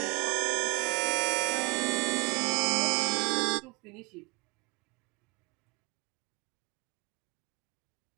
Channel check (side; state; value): left; quieter; 30.5 dB